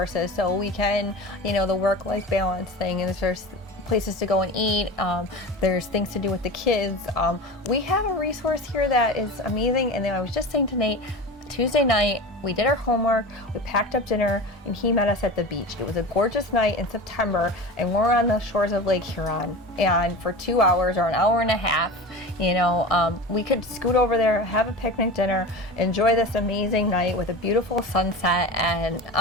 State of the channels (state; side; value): normal; both; correlation 0.30